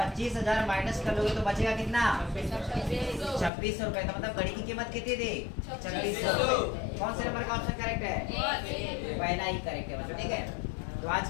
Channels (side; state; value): right; drops out; at 3.5 s